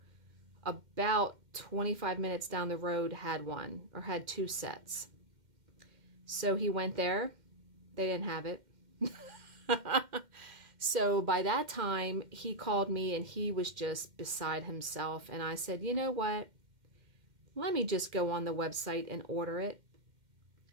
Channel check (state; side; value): late; left; 2.1 ms